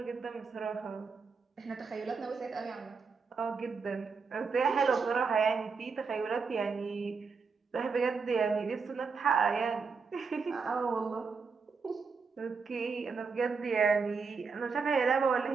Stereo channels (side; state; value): left; quieter; 5.1 dB